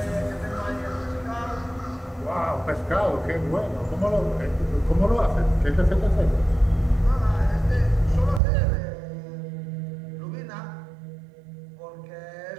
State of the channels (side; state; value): left; drops out; at 8.4 s